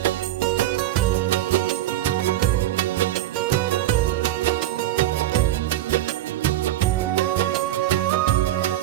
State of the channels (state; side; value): quieter; left; 13.7 dB